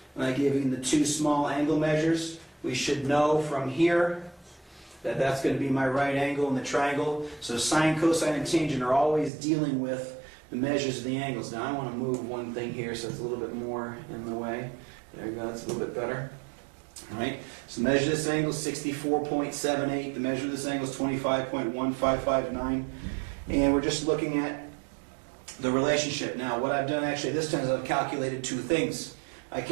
And I've given the 2 small angle measures. We should know from here that that's going to be my right angle in the triangle. So sine, cosine, and tangent are always dealing with the measures of the angles. Now I want to move one thing here so it's a little bit more in the way. There you go, that's a little bit better. All right, so measure this angle is 64.78. The measure of this angle is 25.1559. And we're just looking at the relationship. Now what I've done actually this time is I've calculated 2 things. I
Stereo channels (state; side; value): drops out; left; at 9.3 s